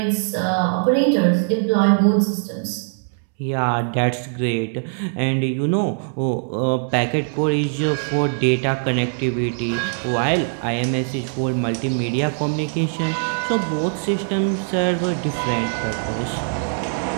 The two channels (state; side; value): silent; left; 65 dB below the other